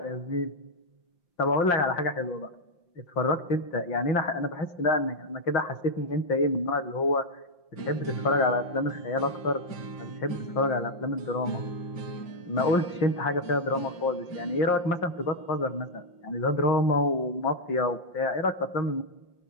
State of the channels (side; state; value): right; late; 5.7 ms